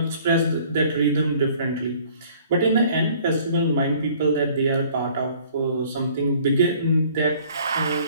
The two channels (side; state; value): both; inverted; correlation -0.55